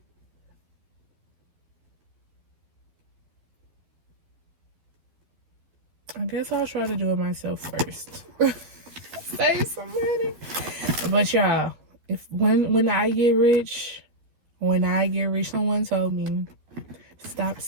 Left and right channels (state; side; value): late; left; 12 ms